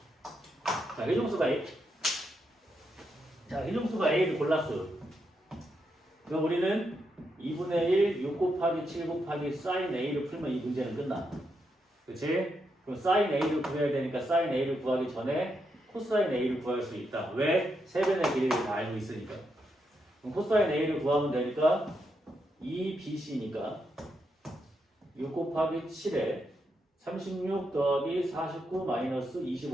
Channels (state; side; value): normal; both; correlation 0.82